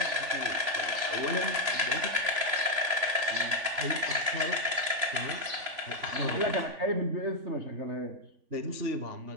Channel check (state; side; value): late; left; 3.5 ms